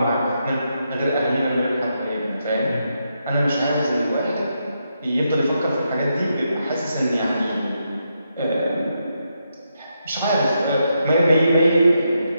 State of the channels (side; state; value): both; inverted; correlation -0.82